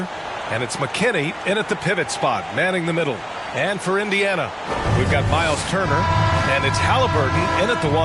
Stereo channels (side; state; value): both; identical; correlation 1.00